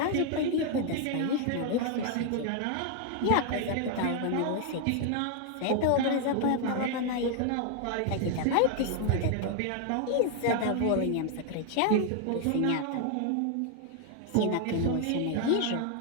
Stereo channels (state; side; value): different; both; correlation 0.00